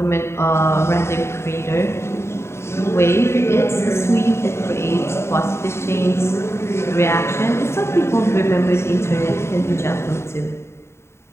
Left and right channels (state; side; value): late; right; 0.13 ms